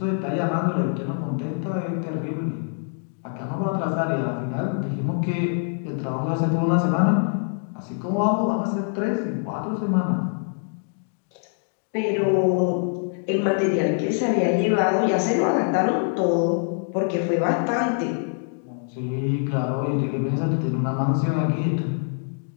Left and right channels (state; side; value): silent; right; 62 dB below the other